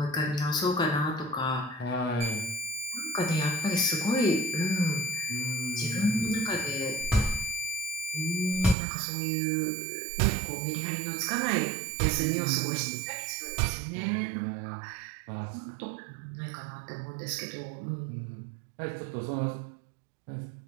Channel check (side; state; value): left; drops out; at 8.8 s